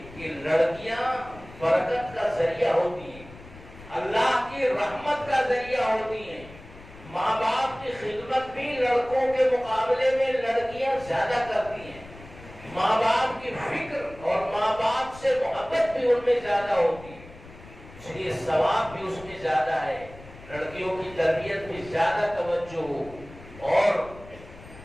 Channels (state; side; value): noise; left; rumble, 19 dB below the sound